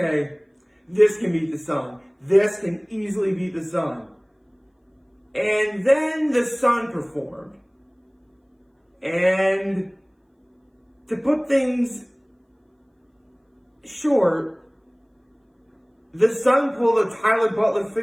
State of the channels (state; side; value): identical; both; correlation 1.00